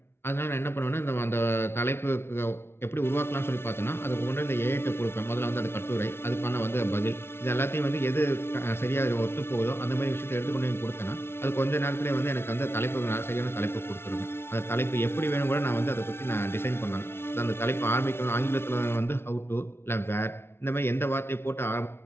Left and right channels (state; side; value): late; right; 0.12 ms